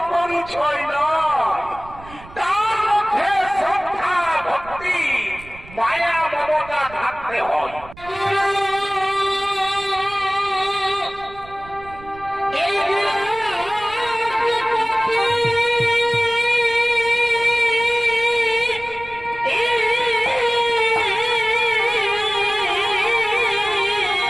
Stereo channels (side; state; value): right; noise; rumble, 19 dB below the sound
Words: পরিচয় নয়, তার মধ্যে শ্রদ্ধা ভক্তি মায়া মমতা থাকতে হয়।